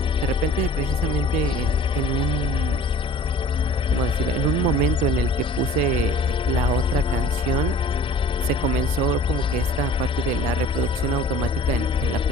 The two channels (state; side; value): normal; both; correlation 0.47